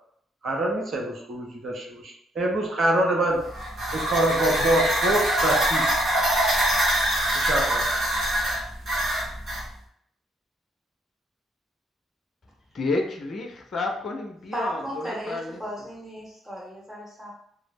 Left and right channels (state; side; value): normal; both; correlation 0.69